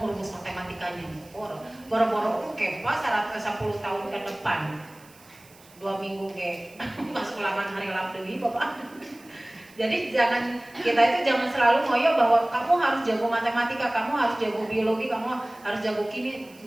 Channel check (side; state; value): right; noise; hiss, 25 dB below the sound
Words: rumus matematikanya, boro-boro kepas 10 tahun ke depan, 2 minggu ke masuk ulangan hari Labdewi Bapak. Jadi kita jangan selalu ngoyo bahwa kamu harus jago matematika, kamu harus jago biologi, kamu harus jago kimia,